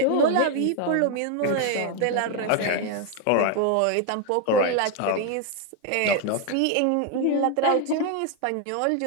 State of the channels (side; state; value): both; different; correlation 0.01